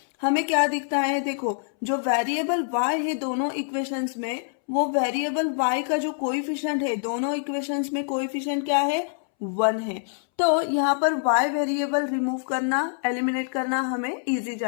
हमें क्या दिखता है, देखो जो वेरिएबल y है दोनों इक्वेशंस में, वो वेरिएबल y का जो कोएफिशिएंट है दोनों इक्वेशंस में, कोएफिशिएंट क्या है, 1 है। तो यहाँ पर y वेरिएबल रिमूव करना, एलिमिनेट करना हमें इजी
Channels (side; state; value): right; silent; 62 dB below the other